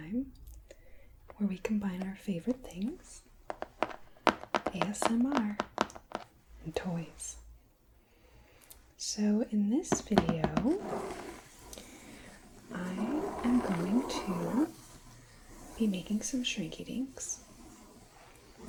where we combine our favorite things, ASMR and toys. So in this video, I am going to be making some Shrinky Dinks.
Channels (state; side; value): identical; both; correlation 1.00